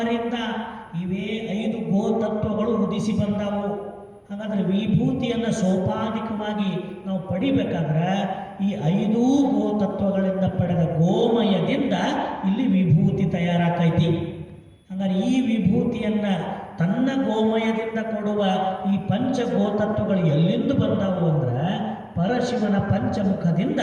ಇವೇ 5 ಗೋತತ್ವಗಳು ಉದಿಸಿ ಬಂದಾವು. ಹಾಗಾದರೆ ವಿಭೂತಿಯನ್ನು ಸೋಪಾಧಿಕವಾಗಿ ನಾವು ಪಡಿಬೇಕಾದ್ರೆ ಈ 5 ಗೋತತ್ವಗಳಿಂದ ಪಡೆದ ಗೋಮಯದಿಂದ ಇಲ್ಲಿ ವಿಭೂತಿ ತಯಾರಾಕೈತಿ. ಹಾಗಾದ್ರೆ ಈ ವಿಭೂತಿಯನ್ನು ತನ್ನ ಗೋಮಯದಿಂದ ಕೊಡುವ ಈ ಪಂಚ ಗೋತತ್ವಗಳು ಎಲ್ಲಿಂದ ಬಂದಾವು ಅಂದ್ರೆ ಪರಶಿವನ ಪಂಚಮುಖದಿಂದ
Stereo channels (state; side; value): identical; both; correlation 1.00